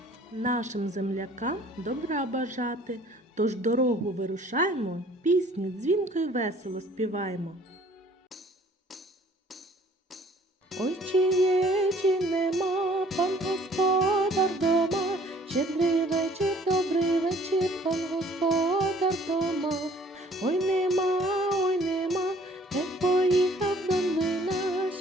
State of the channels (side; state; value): both; normal; correlation 0.56